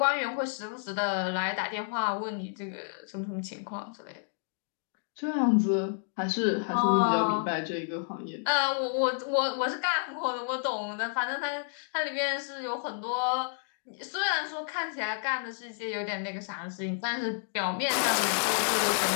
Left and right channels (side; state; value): right; silent; digital silence